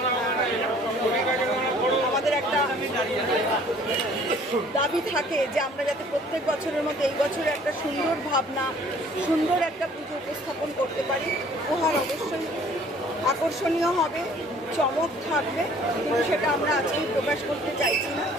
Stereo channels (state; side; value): normal; both; correlation 0.55